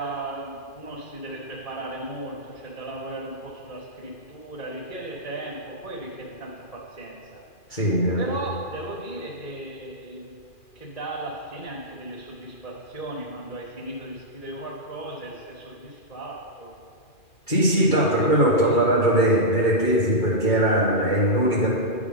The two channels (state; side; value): late; right; 2.4 ms